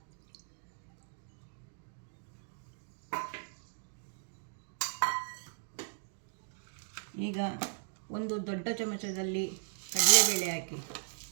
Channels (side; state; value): left; silent; digital silence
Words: ಈಗ ಒಂದು ದೊಡ್ಡ ಚಮಚದಲ್ಲಿ ಕಡಲೆಬೇಳೆ ಹಾಕಿ.